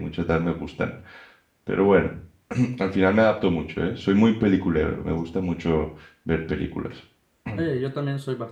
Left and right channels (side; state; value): both; identical; correlation 1.00